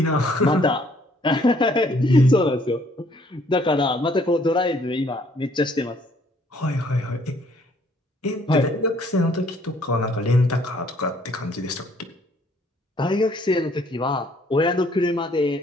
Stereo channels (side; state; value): both; normal; correlation 0.63